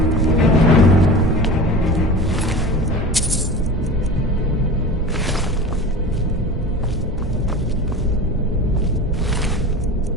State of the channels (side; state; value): both; normal; correlation 0.34